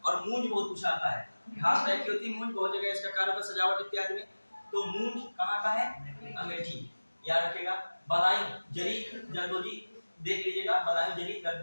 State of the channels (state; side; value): inverted; both; correlation -1.00